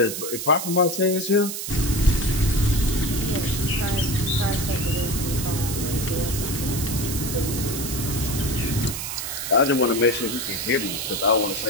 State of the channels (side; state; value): right; noise; hiss, 5 dB below the sound